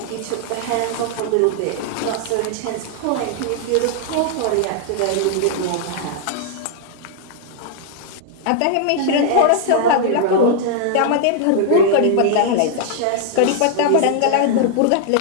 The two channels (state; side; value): different; both; correlation -0.01